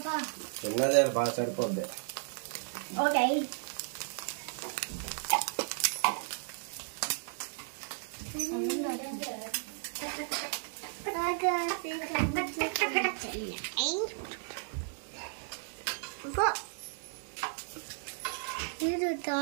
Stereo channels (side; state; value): left; silent; digital silence